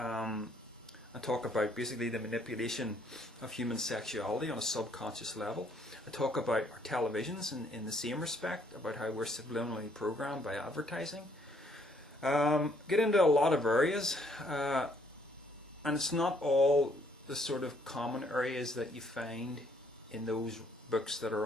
talk about basically the manipulation of human sexuality on a subconscious level. I talk about our televisions in the same respect, about how we're subliminally programmed by advertising. Get into a lot of areas, and it's not all the sort of common areas that you find in those books that are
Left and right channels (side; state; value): both; normal; correlation 0.66